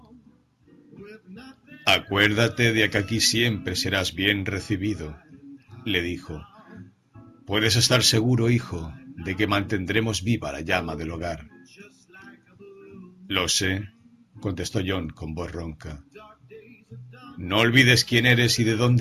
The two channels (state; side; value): identical; both; correlation 1.00